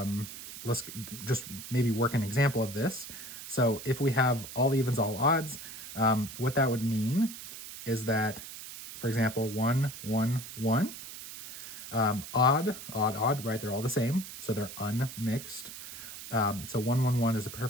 let's just maybe work an example of this. So if we have all evens, all odds, what that would mean is that, for example, 1, 1, 1, odd, odd, odd, right? They're all the same, so they're unmixed. So 1, 1, 1 is a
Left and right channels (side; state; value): right; noise; hiss, 12 dB below the sound